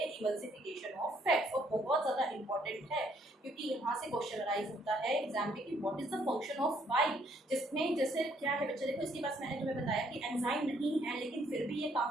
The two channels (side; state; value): both; normal; correlation 0.67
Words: इमल्सिफिकेशन ऑफ फैट्स। और बहुत ज्यादा इंपॉर्टेंट है, क्योंकि यहाँ से क्वेश्चन अराइज होता है एग्जाम में कि what is the function of bile, जिसमें जैसे क्या है बच्चे, देखो इसके पास मैंने तुम्हें बताया कि एंजाइम नहीं है लेकिन फिर भी ये